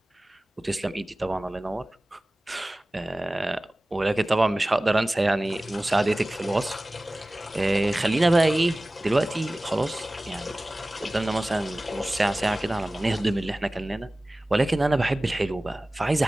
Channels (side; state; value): both; normal; correlation 0.98